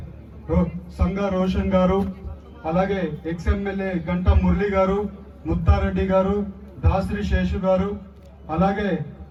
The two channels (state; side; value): identical; both; correlation 1.00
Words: సంగా రోషన్ గారు, అలాగే ఎక్స్ ఎమ్మెల్యే గంటా మురళి గారు, ముత్తారెడ్డి గారు, దాసరి శేషు గారు, అలాగే